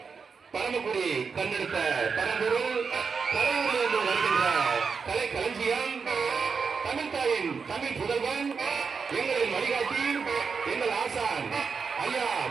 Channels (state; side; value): quieter; left; 5.5 dB